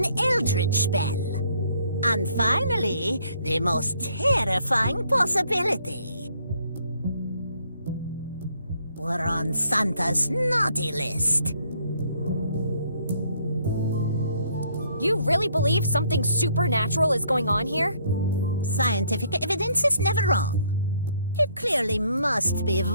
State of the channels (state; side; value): inverted; both; correlation -0.66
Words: eldritch spell. And finally, the most terrifying possibility. We're on Santa's naughty list. You really believe something supernatural is going on here? Scientific evidence is never wrong. It clearly must be